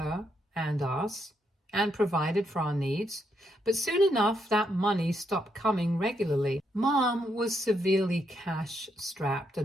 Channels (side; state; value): both; normal; correlation 0.78